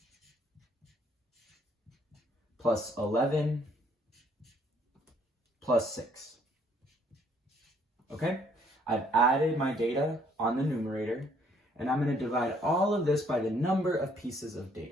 plus 11 plus 6. Okay? I've added my data on the numerator, and I'm going to divide all of this by the number of pieces of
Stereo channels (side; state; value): both; normal; correlation 0.65